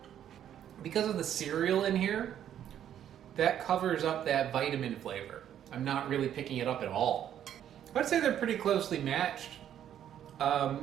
Because of the cereal in here, that covers up that vitamin flavor. I'm not really picking it up at all. I'd say they're pretty closely matched.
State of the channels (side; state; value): left; quieter; 10.3 dB